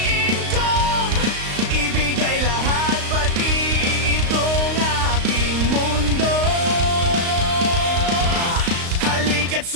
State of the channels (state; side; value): late; left; 35 ms